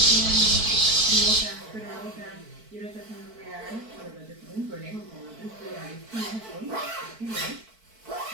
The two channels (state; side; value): late; left; 4.5 ms